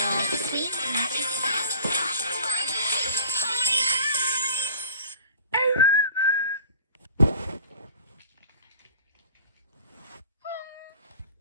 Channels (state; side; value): inverted; both; correlation -0.45